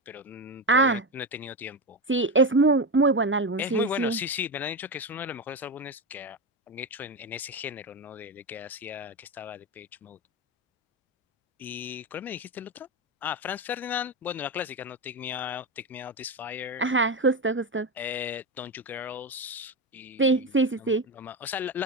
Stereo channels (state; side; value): normal; both; correlation 0.15